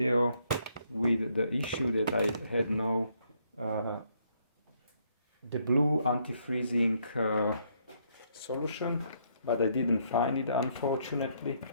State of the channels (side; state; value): both; inverted; correlation -0.72